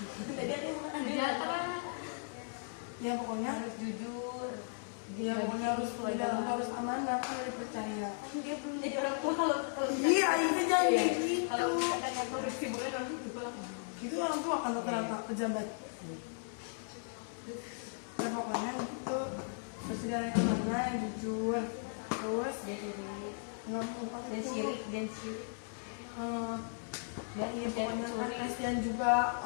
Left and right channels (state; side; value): silent; right; digital silence